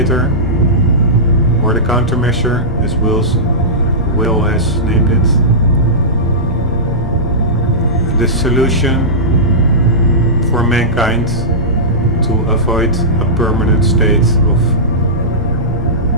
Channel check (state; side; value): normal; both; correlation -0.16